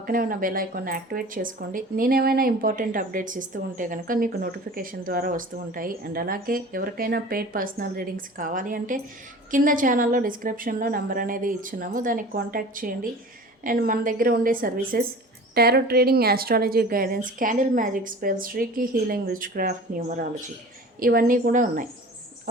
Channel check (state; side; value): normal; both; correlation 0.40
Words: ఉన్న బెల్ ఐకాన్ని యాక్టివేట్ చేసుకోండి. నేనేమైనా ఇంపార్టెంట్ అప్డేట్స్ ఇస్తూ ఉంటే కనుక మీకు నోటిఫికేషన్ ద్వారా వస్తూ ఉంటాయి. అండ్ అలాగే ఎవరికైనా పెయిడ్ పర్సనల్ రీడింగ్స్ కావాలి అంటే కింద ఛానల్లో డిస్క్రిప్షన్లో నెంబర్ అనేది ఇచ్చున్నాము, దానికి కాంటాక్ట్ చేయండి. అండ్ మన దగ్గర ఉండే services tarot trading, astrology guidance, candle magic spells, reiki healing, which craft, numerology ఇవన్నీ కూడా ఉన్నాయి.